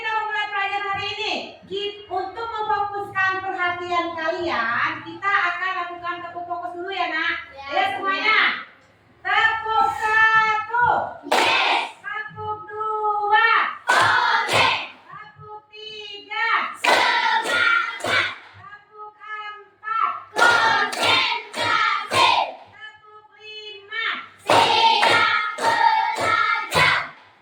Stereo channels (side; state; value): both; identical; correlation 1.00